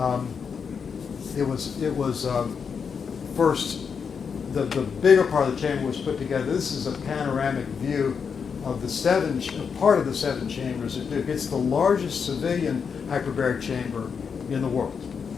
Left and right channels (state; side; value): quieter; right; 6.2 dB